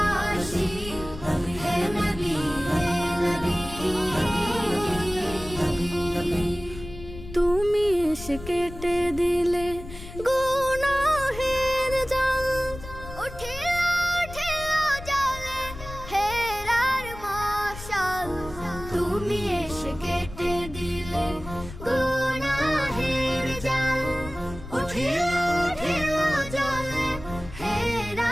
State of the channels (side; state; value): left; noise; rumble, 13 dB below the sound